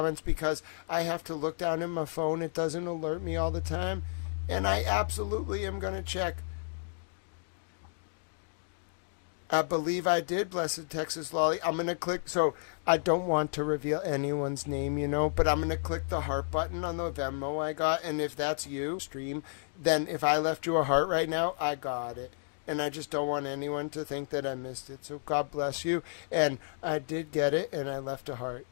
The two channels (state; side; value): silent; right; digital silence